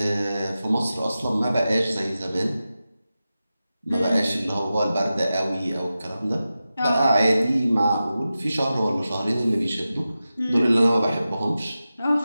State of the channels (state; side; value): inverted; both; correlation -0.93